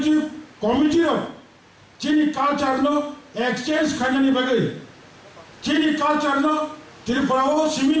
কমিটির চিনি কালচারনো এক্সচেঞ্জ খাইনানি বাকে চিনি কালচারনো ত্রিপুরাও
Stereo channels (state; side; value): identical; both; correlation 1.00